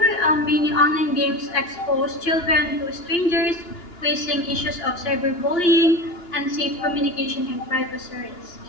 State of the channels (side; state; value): right; late; 2.9 ms